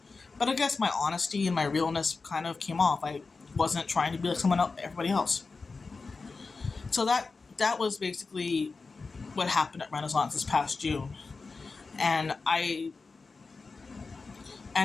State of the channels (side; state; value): right; quieter; 4.2 dB